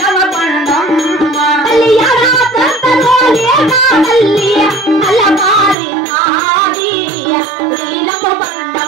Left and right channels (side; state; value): left; drops out; at 5.8 s